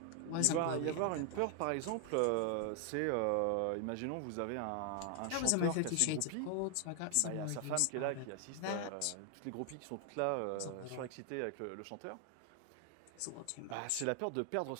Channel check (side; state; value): both; different; correlation 0.00